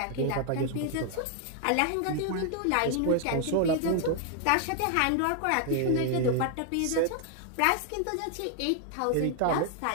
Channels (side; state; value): both; different; correlation 0.00